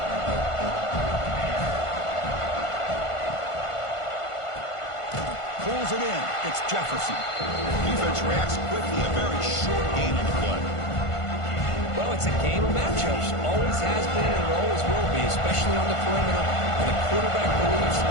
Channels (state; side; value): late; right; 1.5 ms